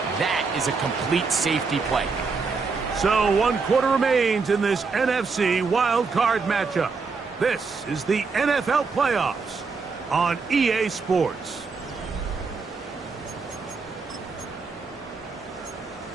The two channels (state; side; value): quieter; left; 4.7 dB